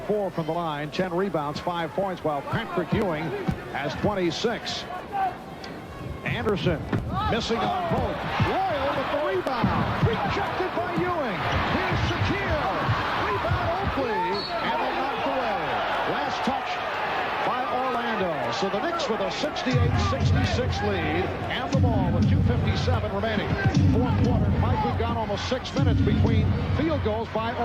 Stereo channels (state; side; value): identical; both; correlation 1.00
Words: from the line, 10 rebounds, 5 points, while Patrick Ewing has 26. Anderson missing on both. Royal with the rebound. Rejected by Ewing. Here's Shaquille. Rebound Oakley. And they knocked away. Last touch by Orlando. So the Knicks with a 68-66 lead. And the ball with 2:57 remaining. Fourth quarter. Mike, we've got almost 6 minutes between field goals by